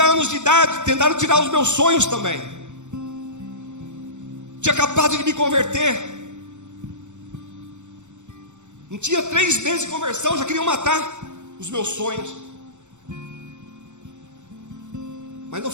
anos de idade, tentaram tirar os meus sonhos também. Tinha acabado de me converter. Não tinha 3 meses de conversão, já queriam matar os meus sonhos. Mas não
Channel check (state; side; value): late; left; 0.84 ms